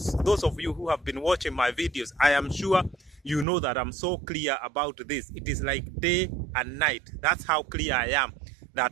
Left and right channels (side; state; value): left; drops out; at 3.5 s